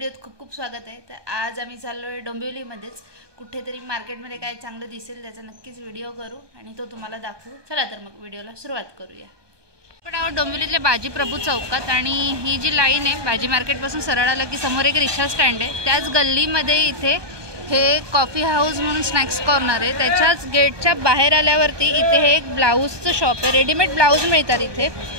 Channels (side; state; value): left; late; 1.2 ms